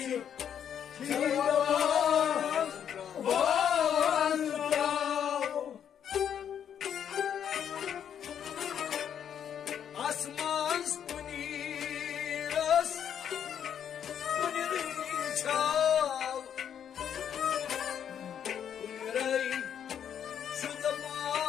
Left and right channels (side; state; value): right; quieter; 8.8 dB